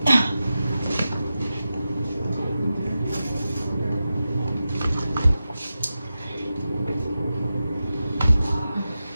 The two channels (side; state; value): both; inverted; correlation -0.92